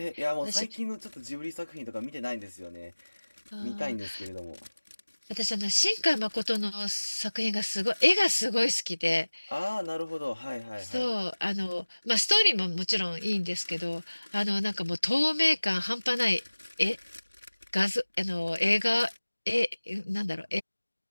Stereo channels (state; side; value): inverted; both; correlation -1.00